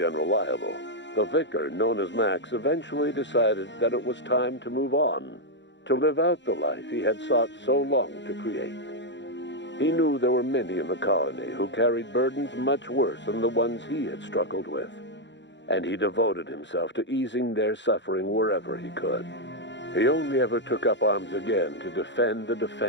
Unreliable, the vicar, known as Max, eventually decided that it was time to move on, to live out the life he had sought so long to create. He knew there were many in the colony who carried burdens much worse than the ones he had struggled with, and he devoted himself to easing their suffering wherever he could. He only ever took up arms again to defend the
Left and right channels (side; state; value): right; late; 0.52 ms